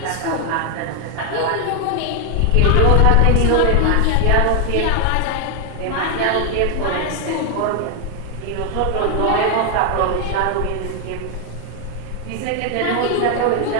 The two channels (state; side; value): different; both; correlation 0.00